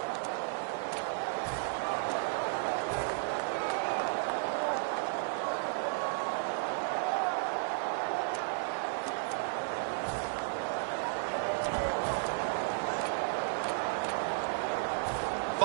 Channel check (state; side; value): silent; left; digital silence